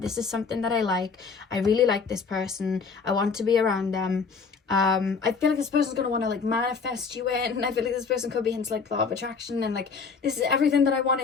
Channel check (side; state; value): right; quieter; 5.2 dB